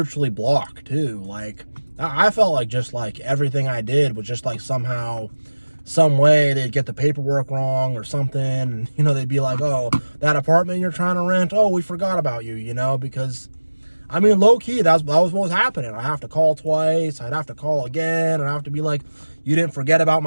blocked too. Like, I felt like just like everything I did was just like somehow, some way they'd get the paperwork wrong or something. And, you know, they'd be like, oh, that apartment you're trying to rent, oh, we forgot about you, you know, because, I mean, low key, that was what was happening. I have to call twice. I'd have to call again. And I have to be like, you didn't forget about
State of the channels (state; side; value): inverted; both; correlation -1.00